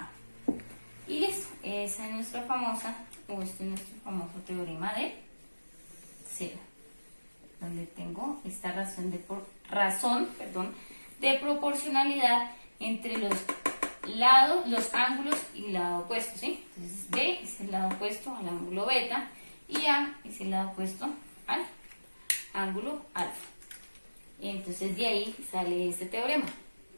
Y listo, esa es nuestra famosa, o este es nuestro famoso teorema de seno, donde tengo esta razón de proporcionalidad entre los lados, los ángulos y el lado opuesto, ¿sí? Entonces B es el lado opuesto al ángulo beta y A es el lado opuesto al ángulo alfa. Entonces de ahí sale este teorema.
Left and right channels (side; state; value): both; inverted; correlation -1.00